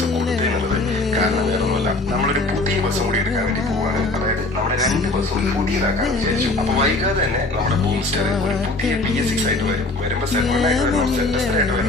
കൊടുത്തതെന്നുള്ളത്. കാരണം വേറൊന്നുമല്ല, നമ്മളൊരു പുതിയ ബസ്സും കൂടി എടുക്കാൻ വേണ്ടി പോവാണ്. അതായത് നമ്മുടെ 2 ബസ്സും പുതിയതാക്കാൻ വിചാരിച്ചു. അപ്പൊ വൈകാതെ തന്നെ നമ്മുടെ ബൂംസ്റ്റർ ഒരു പുതിയ BS6 ആയിട്ട് വരും. വരുമ്പോ സെഗ്മെന്റ് ആയിട്ട് വരണം, സെറ്റസ്റ്റർ ആയിട്ട്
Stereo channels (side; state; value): right; quieter; 3.0 dB